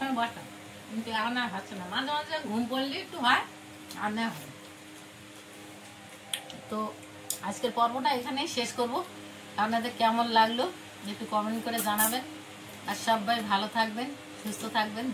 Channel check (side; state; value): both; identical; correlation 1.00